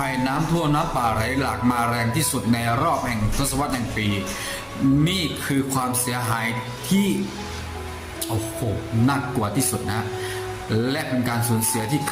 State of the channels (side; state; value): both; identical; correlation 1.00